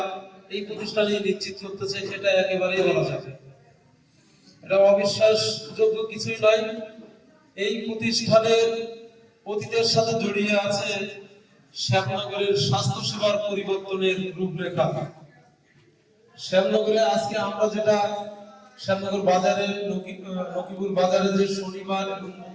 এই প্রতিষ্ঠানে নিশ্চিত করতেছে, সেটা একেবারেই বলা যায়। এটা অবিশ্বাসযোগ্য কিছুই নয়। এই প্রতিষ্ঠানের অতীতের সাথে জড়িয়ে আছে শ্যামনগরের স্বাস্থ্যসেবার পরিবর্তনের রূপরেখা। শ্যামনগরে আজকে আমরা যেটা শ্যামনগর বাজারে নকিপুর বাজারে যে শনিবার এবং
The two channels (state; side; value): identical; both; correlation 1.00